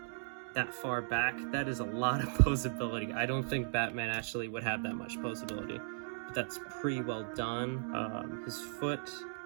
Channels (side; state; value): left; silent; digital silence